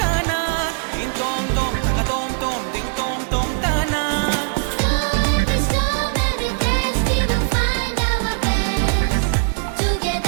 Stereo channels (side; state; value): left; silent; digital silence